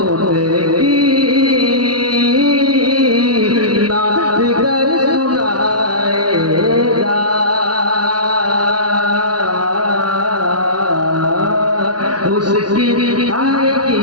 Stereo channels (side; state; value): left; late; 0.69 ms